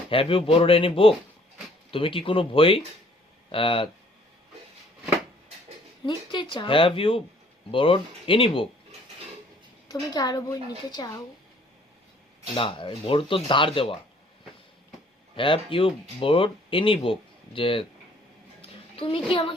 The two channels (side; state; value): both; normal; correlation 0.59